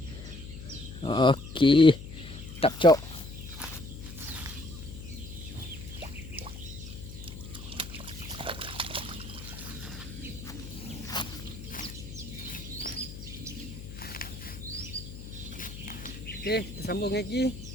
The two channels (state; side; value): noise; left; hum, 11 dB below the sound